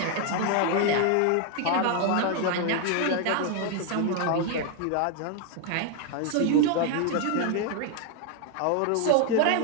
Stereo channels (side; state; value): both; different; correlation 0.00